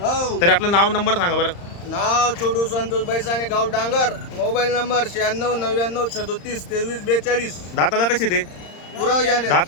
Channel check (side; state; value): right; late; 35 ms